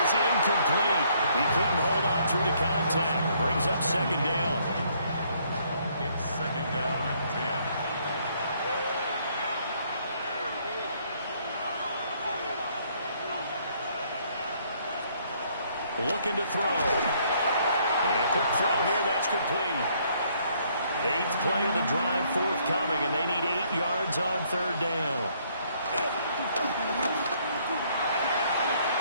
is incomplete. He couldn't hold on through the contact. Brings up second down. It's second down and 10. Looking to throw. And a quick throw here, that's complete. 8th play of the drive forthcoming, and they need 8 yards on third down.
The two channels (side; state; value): both; inverted; correlation -0.67